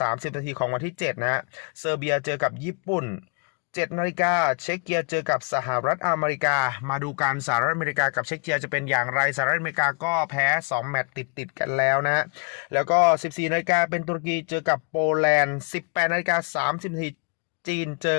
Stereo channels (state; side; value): quieter; right; 38.5 dB